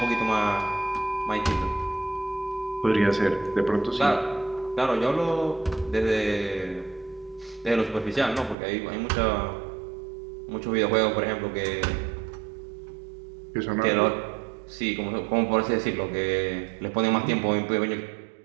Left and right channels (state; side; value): drops out; left; at 8.6 s